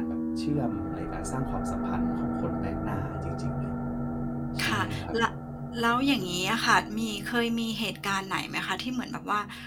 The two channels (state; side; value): identical; both; correlation 1.00